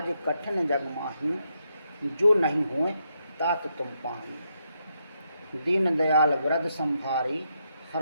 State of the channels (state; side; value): inverted; both; correlation -0.80